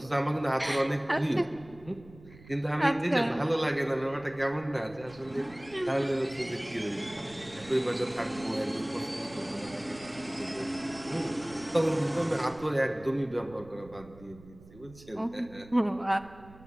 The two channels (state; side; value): noise; right; rumble, 21 dB below the sound